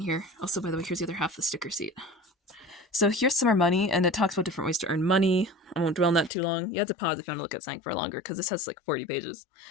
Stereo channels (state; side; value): drops out; right; at 6.3 s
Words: here. Also, by the way, here's the other half of the sticker sheet. So here's Summer Money, and it talks about different ways to earn money. I won't dwell on that too long. You have to pause if you want to look at something for longer, because this has like 40 pages.